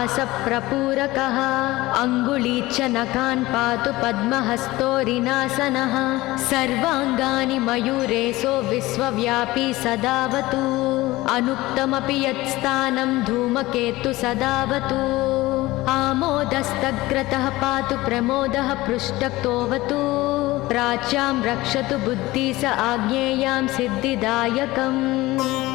अङ्गुलीच्च नखान् पातु पद्महस्तोरिनासनः सर्वाङ्गानि मयूरेशो विश्वव्यापी सदावतु अनुक्तमपि यत्स्थानं धूमकेतु सदावतु आमोदस्तग्रतः पातु प्रमोदः पृष्ठक्तोऽवतु प्राच्यां रक्षतु बुद्धि स आज्ञेयां सिद्धिदायकम्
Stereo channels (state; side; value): quieter; right; 18.9 dB